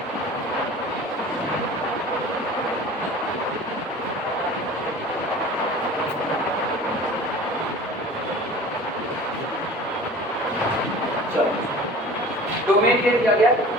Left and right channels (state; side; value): normal; both; correlation 0.41